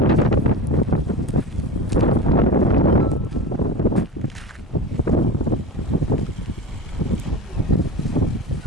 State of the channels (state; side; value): normal; both; correlation 0.28